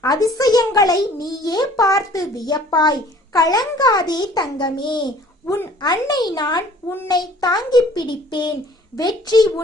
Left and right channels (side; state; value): both; normal; correlation 0.53